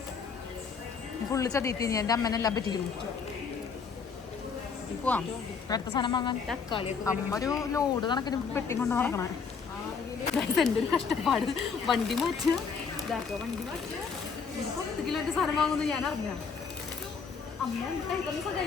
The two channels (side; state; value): right; quieter; 5.7 dB